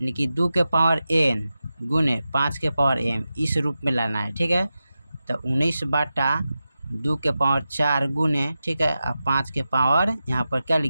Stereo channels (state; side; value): inverted; both; correlation -0.92